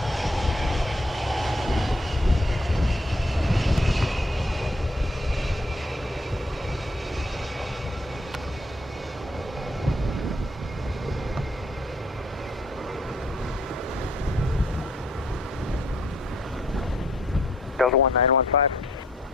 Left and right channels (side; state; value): both; normal; correlation 0.66